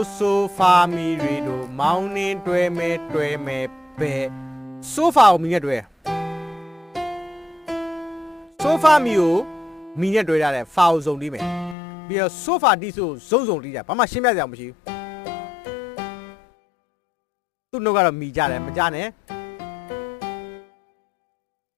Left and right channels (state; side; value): drops out; right; at 11.8 s